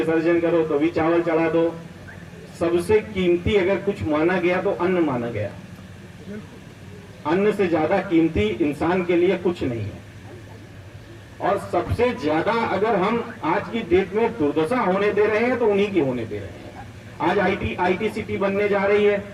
करो तो भी चावल चढ़ा दो। सबसे कीमती अगर कुछ माना गया तो अन्न माना गया। अन्न से ज्यादा कीमती इंसान के लिए कुछ नहीं है। और सबसे ज्यादा अगर हम आज की डेट में दुर्दशा होने दे रहे हैं तो उन्हीं की होने दे रहे हैं। आज आईटी सिटी बनने जा रही है,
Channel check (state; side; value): identical; both; correlation 1.00